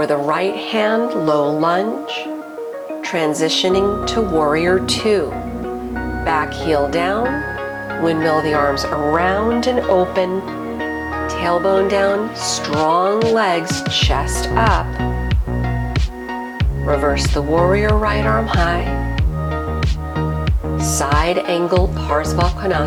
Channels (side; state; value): both; identical; correlation 1.00